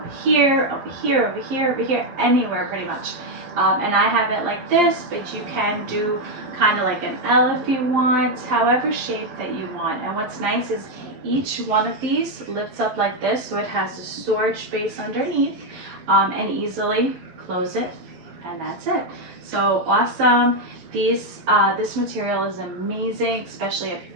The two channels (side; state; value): left; late; 12 ms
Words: here, over here, over here, over here, anywhere pretty much. And I have it like this, but you can do kind of like an L if you want, however shape that you want. And what's nice is each one of these lifts up like this, so it has a storage space underneath, and easily close it, and that's it. So awesome. This material is amazing, especially if